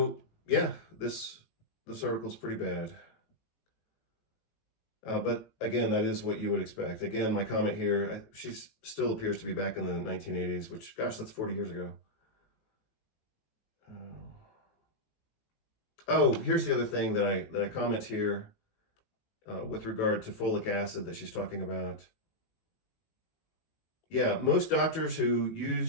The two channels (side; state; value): right; late; 18 ms